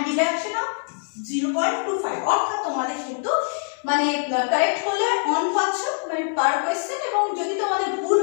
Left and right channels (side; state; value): right; silent; digital silence